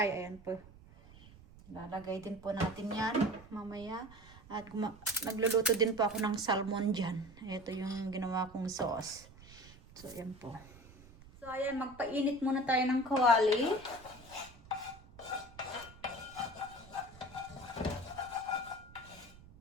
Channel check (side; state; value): right; noise; rumble, 21 dB below the sound